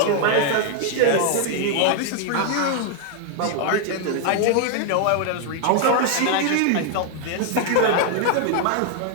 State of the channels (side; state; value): both; different; correlation 0.00